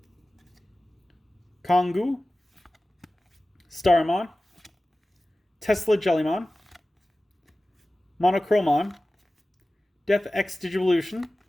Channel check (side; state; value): both; normal; correlation 0.96